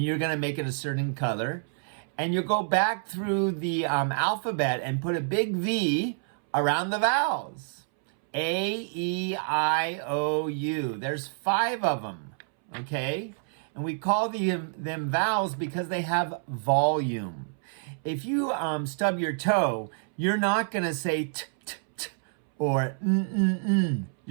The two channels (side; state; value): left; silent; 59 dB below the other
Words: you're going to make it a certain color, and you'll go back through the alphabet and put a big V around the vowels. A, E, I, O, U. There's 5 of them. Okay, and we call them vowels because they have volume. If you stub your toe, you're not going to say t, t, t, or n, n, n.